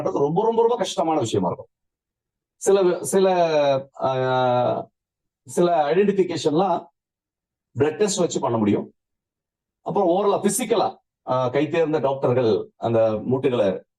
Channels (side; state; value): both; identical; correlation 1.00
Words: ரொம்ப ரொம்ப ரொம்ப கஷ்டமான விஷயமா இருக்கும். சில சில சில ஐடென்டிபிகேஷன்லாம் பிளட் டெஸ்ட் வச்சு பண்ண முடியும். அப்புறம் ஓரளவு பிசிக்கலா கை தேர்ந்த டாக்டர்கள் அந்த மூட்டுகளை